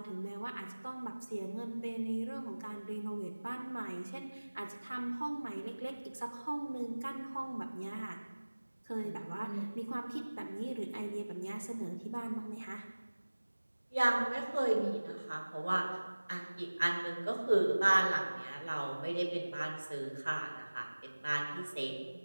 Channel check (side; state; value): both; inverted; correlation -1.00